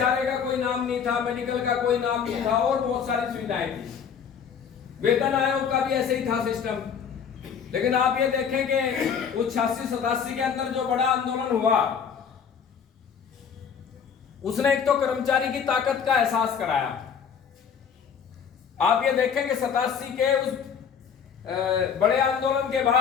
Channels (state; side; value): quieter; right; 7.1 dB